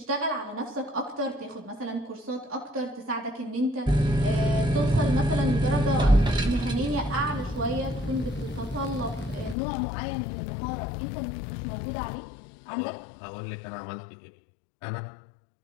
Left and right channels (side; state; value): right; drops out; at 9.6 s